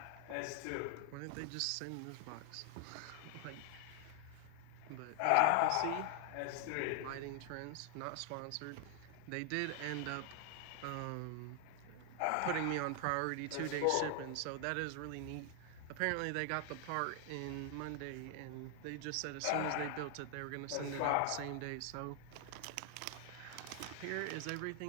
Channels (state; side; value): different; both; correlation 0.00